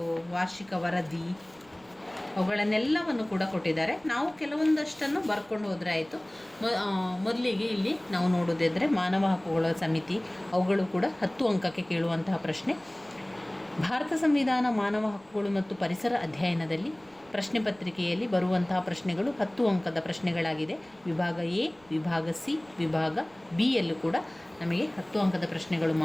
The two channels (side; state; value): right; noise; rumble, 29 dB below the sound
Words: ವಾರ್ಷಿಕ ವರದಿ ಅವುಗಳನ್ನೆಲ್ಲವನ್ನು ಕೂಡ ಕೊಟ್ಟಿದ್ದಾರೆ. ನಾವು ಕೆಲವೊಂದಷ್ಟನ್ನು ಬರ್ಕೊಂಡು ಹೋದರೆ ಆಯಿತು. ಮೊದಲಿಗೆ ಇಲ್ಲಿ ನಾವು ನೋಡೋದಿದ್ದರೆ ಮಾನವ ಹಕ್ಕುಗಳ ಸಮಿತಿ, ಅವುಗಳು ಕೂಡ 10 ಅಂಕಕ್ಕೆ ಕೇಳುವಂತಹ ಪ್ರಶ್ನೆ. ಭಾರತ ಸಂವಿಧಾನ ಮಾನವ ಹಕ್ಕುಗಳು ಮತ್ತು ಪರಿಸರ ಅಧ್ಯಯನದಲ್ಲಿ ಪ್ರಶ್ನೆ ಪತ್ರಿಕೆಯಲ್ಲಿ ಬರುವಂತಹ ಪ್ರಶ್ನೆಗಳು 10 ಅಂಕದ ಪ್ರಶ್ನೆಗಳಾಗಿದೆ. ವಿಭಾಗ ಎ, ವಿಭಾಗ ಸಿ, ವಿಭಾಗ ಬಿ ಯಲ್ಲೂ ಕೂಡ ನಮಗೆ 10 ಅಂಕದ ಪ್ರಶ್ನೆಗಳು